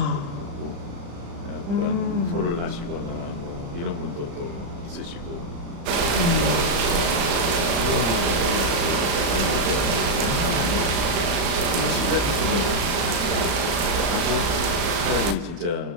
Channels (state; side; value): late; left; 35 ms